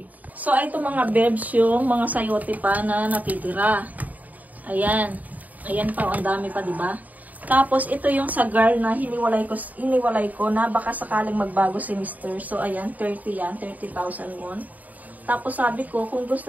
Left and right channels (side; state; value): left; late; 0.077 ms